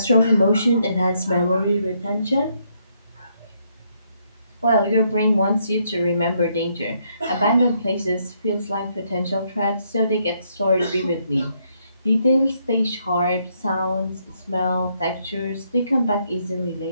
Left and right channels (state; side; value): inverted; both; correlation -0.74